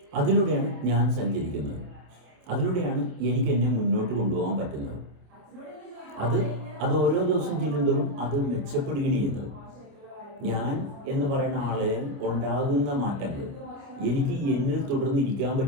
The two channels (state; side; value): late; left; 27 ms